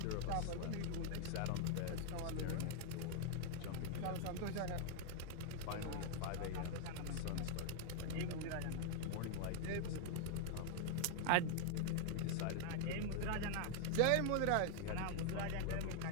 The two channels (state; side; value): different; both; correlation 0.00